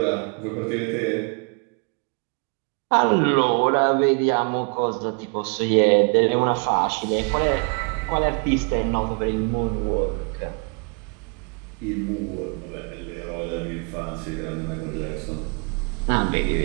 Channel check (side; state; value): left; quieter; 36.1 dB